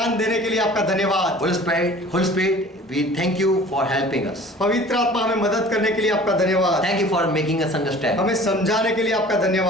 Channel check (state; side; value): normal; both; correlation 0.46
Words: देने के लिए आपका धन्यवाद। Holy Spirit, we thank you for helping us. पवित्र आत्मा हमें मदद करने के लिए आपका धन्यवाद। Thank you for making us understand. हमें समझाने के लिए आपका